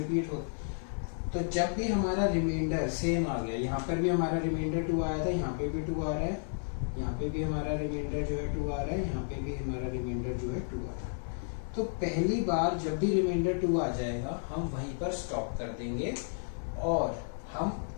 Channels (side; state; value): right; silent; digital silence